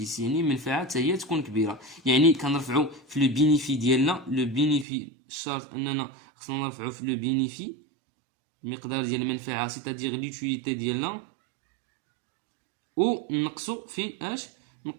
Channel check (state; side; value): drops out; left; at 4.9 s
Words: يعني المنفعه حتى هي تكون كبيره، يعني كنرفعوا في لو بينيفي ديالنا. لو بينيفي شرط اننا خصنا نرفعوا في لو بينيفي المقدار ديال المنفعه سيتادير ليوتيليتي ديالنا، و نقصوا في اش؟